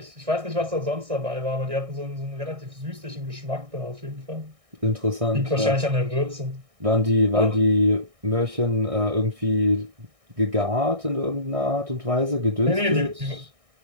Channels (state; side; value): late; left; 1.6 ms